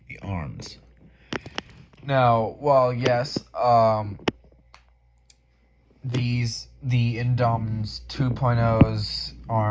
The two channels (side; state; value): both; identical; correlation 1.00